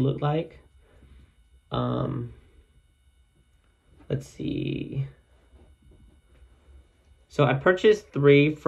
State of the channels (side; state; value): both; identical; correlation 1.00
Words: like. Let's see. So I purchased 3